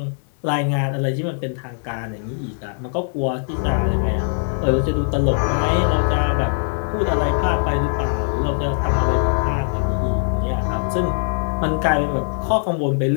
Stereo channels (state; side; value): silent; right; digital silence